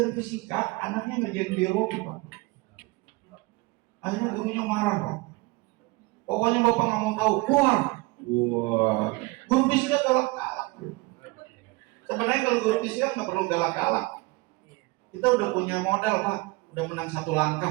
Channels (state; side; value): quieter; left; 23.7 dB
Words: fisika, anaknya ngerjain biologi Pak. Akhirnya gurunya marah Pak. Pokoknya Bapak nggak mau tahu, keluar. Wah, guru fisika galak-galak. Sebenarnya kalau guru fisika nggak perlu galak-galak. Kita udah punya modal Pak, udah menang 1